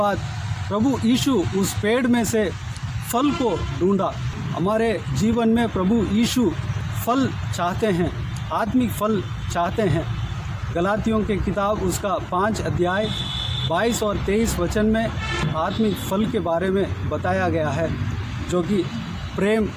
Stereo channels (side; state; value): both; identical; correlation 1.00